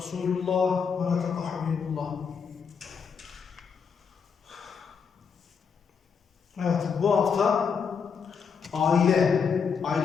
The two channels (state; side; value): quieter; right; 6.2 dB